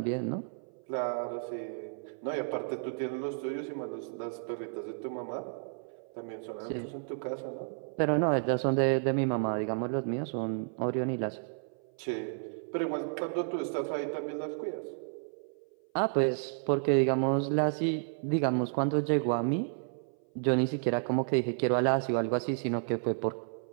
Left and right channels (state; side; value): silent; left; 56 dB below the other